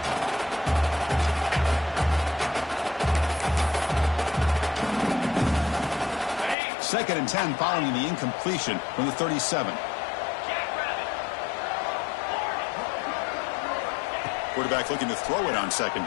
Second and 10 following the incompletion from the 37. Quarterback looking to throw it on second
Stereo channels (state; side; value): drops out; right; at 6.6 s